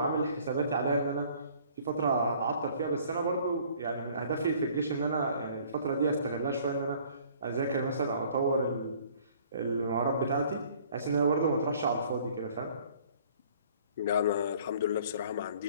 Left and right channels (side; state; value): both; inverted; correlation -0.55